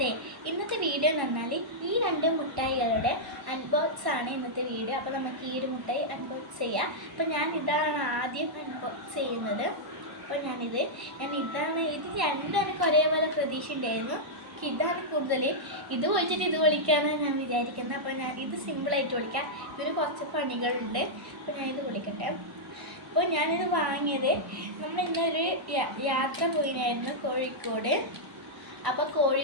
ഇന്നത്തെ വീഡിയോ എന്ന് പറഞ്ഞാൽ ഈ രണ്ട് മുട്ടായികളുടെ അൺബോക്സ് ആണ് ഇന്നത്തെ വീഡിയോ. അപ്പോൾ നമുക്ക് ഈ ഒരു മുട്ടായി അൺബോക്സ് ചെയ്യാം. അപ്പോൾ ഞാൻ ഇതാണ് ആദ്യം അൺബോക്സ് ചെയ്യുന്നത്. അപ്പോൾ ഇത് രണ്ടും എനിക്ക് ഒരേപോലെ പ്രതീക്ഷ ഉണ്ടായിരുന്നു. ഇതാണ് കൂടുതൽ ഇത് പൊളിച്ചിട്ട് ഇത് പൊളിക്കാമെന്ന് ഞാൻ വിചാരിക്കുന്നത്. അപ്പോൾ ഞാൻ ഇത് സിമ്പിളായിട്ട് പൊളിക്കാം. ഇതിന് കുറച്ച് പണികളുണ്ട്. അപ്പോൾ ഞാനിത് പൊളിക്കട്ടെ. അപ്പോൾ ഞാനിത് വാങ്ങിയത് നമ്മൾ ഇന്നൊരു യാത്ര പോയിരുന്നു കോഴിക്കോട്. അപ്പോൾ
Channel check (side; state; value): left; late; 1.0 ms